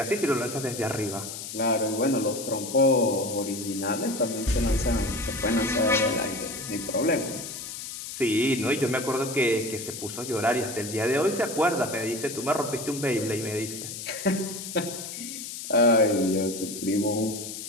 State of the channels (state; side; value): noise; left; hiss, 8 dB below the sound